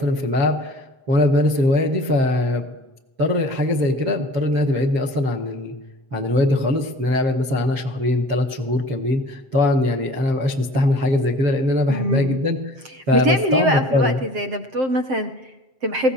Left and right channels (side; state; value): left; late; 7.6 ms